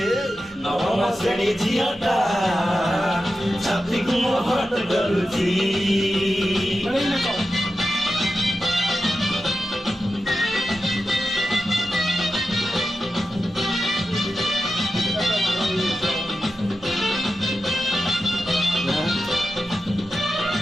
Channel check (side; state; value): both; normal; correlation 0.91